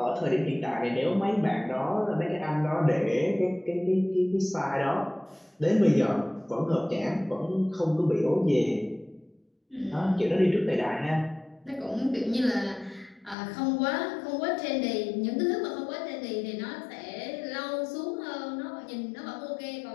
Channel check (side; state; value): right; drops out; at 13.4 s